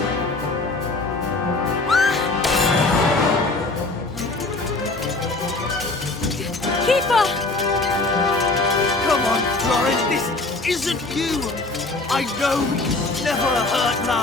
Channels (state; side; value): quieter; right; 3.2 dB